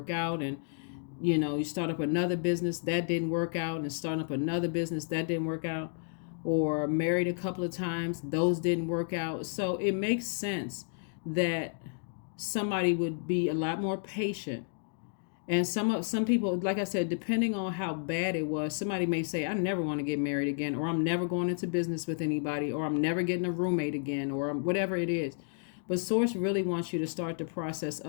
out. And, you know, you start up another business that didn't work out, and starting up another business that didn't work out, or married a couple of times, those didn't work out. So it makes sense that somebody would be a lot more patient. And some people, like I said, depending on how bad it was, somebody may say, I never want to get married again, or I'm never going into business with anybody, or I'm never getting a roommate again, or whatever it is. But Source really wants you to start the process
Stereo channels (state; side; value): silent; right; digital silence